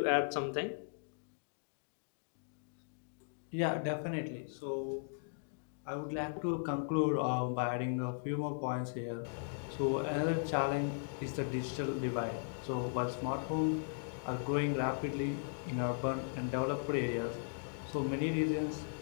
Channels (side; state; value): right; silent; digital silence